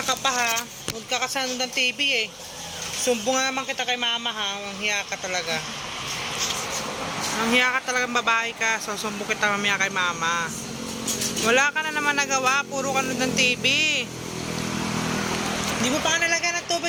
ka pa ha. Huwag ka kasano ng TV eh. Sumbong naman kita kay mama ha. Ang hiya ka talaga. Ang hiya ka talagang babae ka. So sumbong kita mamaya kay mama. Wala ka na naman nagawa. Puro ka ng TV. Hindi mo pa ka nalagyan ng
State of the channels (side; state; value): both; identical; correlation 1.00